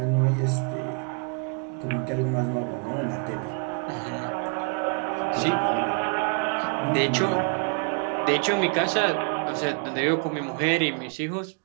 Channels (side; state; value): left; quieter; 39.6 dB